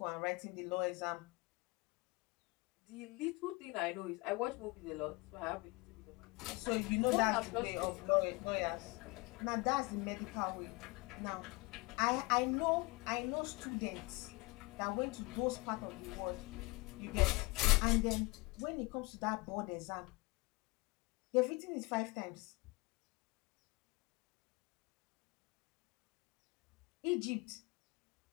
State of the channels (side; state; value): right; quieter; 25.9 dB